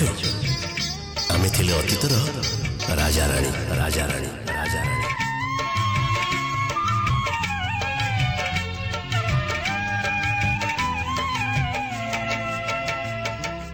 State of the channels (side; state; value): both; identical; correlation 1.00